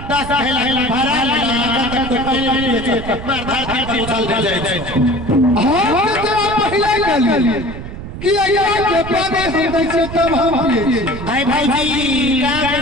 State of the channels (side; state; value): right; noise; rumble, 10 dB below the sound